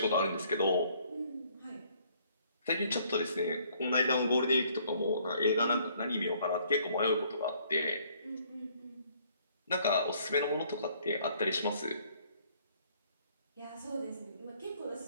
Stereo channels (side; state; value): both; inverted; correlation -0.63